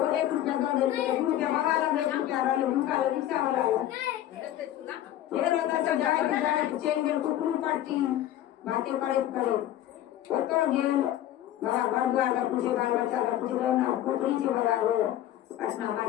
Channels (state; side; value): quieter; right; 12.7 dB